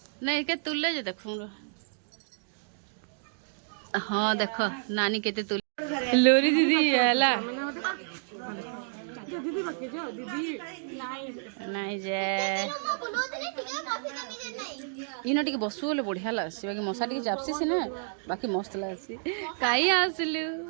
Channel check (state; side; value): silent; left; digital silence